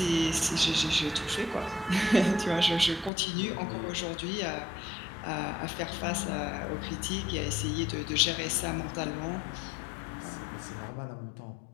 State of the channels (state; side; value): drops out; right; at 3.1 s